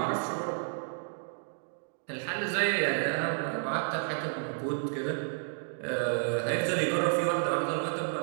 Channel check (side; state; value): left; silent; digital silence